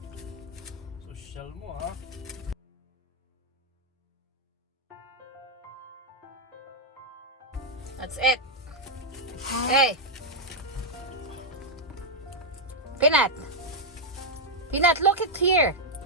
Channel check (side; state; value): both; normal; correlation -0.03